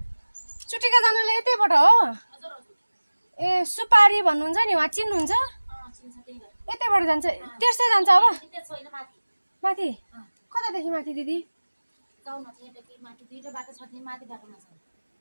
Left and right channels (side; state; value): both; inverted; correlation -1.00